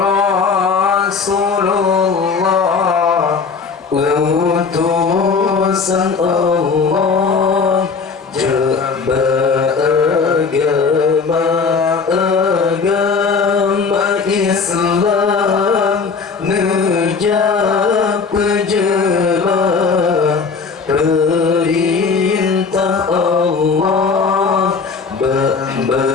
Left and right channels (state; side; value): quieter; right; 5.1 dB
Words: Rasulullah, utusan Allah, agama Islam, nejak pejelah perintah Allah,